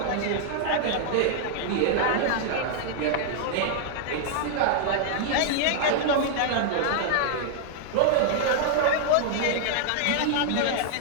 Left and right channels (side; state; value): both; different; correlation -0.01